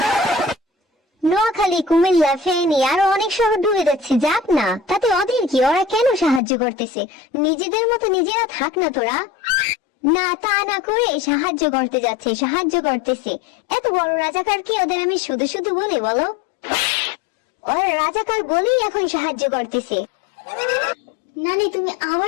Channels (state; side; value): drops out; right; at 6.4 s